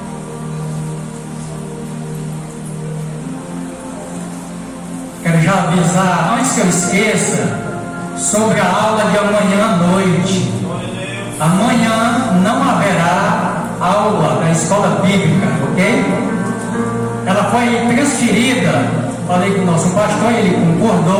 Quero já avisar, antes que eu esqueça, sobre a aula de amanhã à noite. Amanhã não haverá aula da escola bíblica, ok? Ela foi transferida, falei com o nosso pastor, ele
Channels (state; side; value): identical; both; correlation 1.00